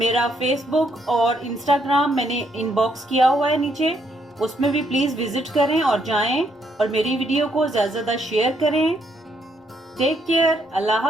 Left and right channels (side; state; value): both; normal; correlation 0.73